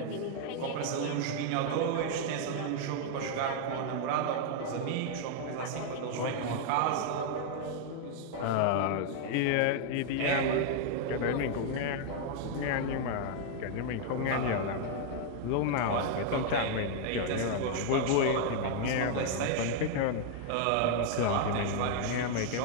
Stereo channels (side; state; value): both; different; correlation 0.00